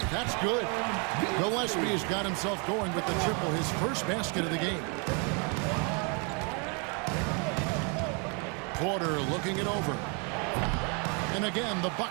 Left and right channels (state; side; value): quieter; left; 35.2 dB